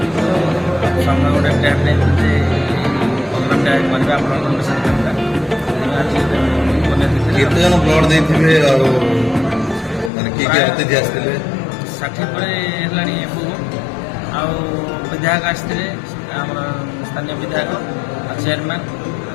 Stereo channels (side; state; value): right; drops out; at 10.1 s